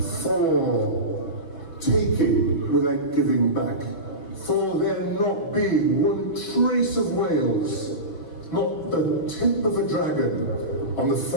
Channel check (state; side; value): late; right; 5.8 ms